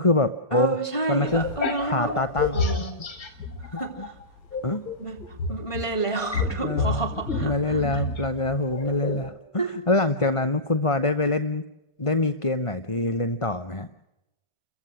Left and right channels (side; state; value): right; late; 1.5 ms